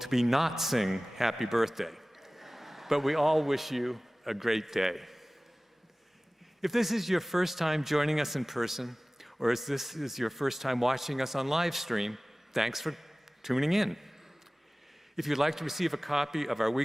be not sing happy birthday, but we all wish you a great day. If this is your first time joining us in person, or if this is your first time watching us on live stream, thanks for tuning in. If you'd like to receive a copy of our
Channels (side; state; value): both; normal; correlation 0.98